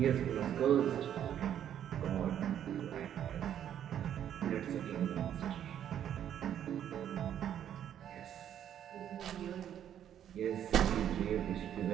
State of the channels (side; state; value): left; quieter; 10.0 dB